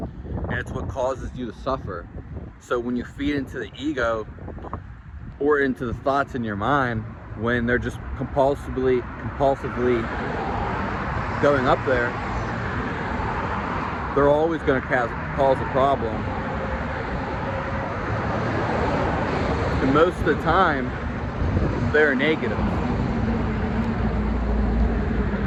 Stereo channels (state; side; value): identical; both; correlation 1.00